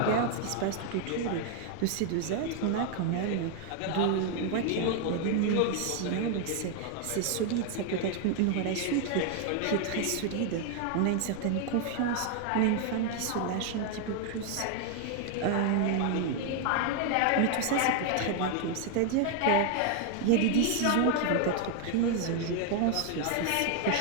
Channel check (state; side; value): different; both; correlation 0.00